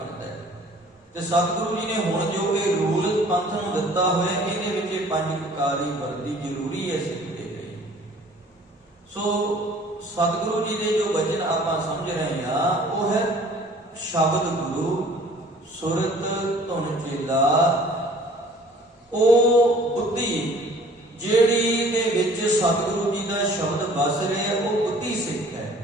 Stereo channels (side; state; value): both; normal; correlation 0.52